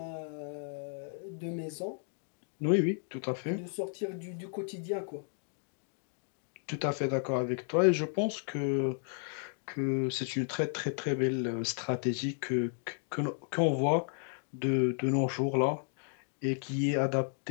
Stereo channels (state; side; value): silent; right; 55 dB below the other